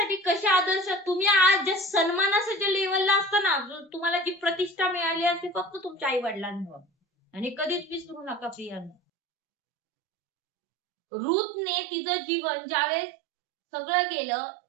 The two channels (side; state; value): left; drops out; at 9.0 s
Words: कसे आदर्श, तुम्ही आज ज्या सन्मानाच्या लेवलला असताना, तुम्हाला जी प्रतिष्ठा मिळाली असते फक्त तुमच्या आई वडिलांमुळे, आणि कधीच विसरू नका प्रियांनो. रूथने तिचं जीवन ज्यावेळेस सगळं गेलं,